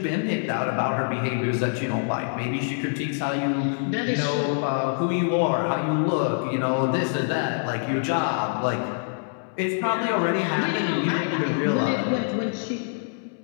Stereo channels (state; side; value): silent; right; digital silence